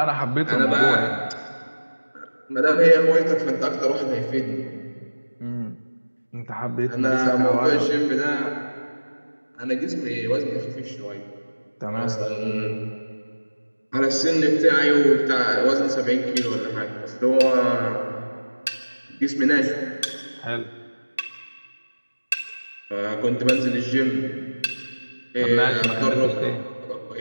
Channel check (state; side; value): inverted; both; correlation -1.00